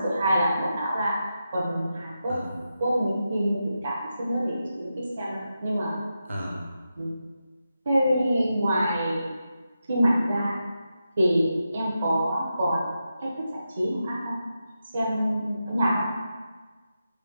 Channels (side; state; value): both; inverted; correlation -0.88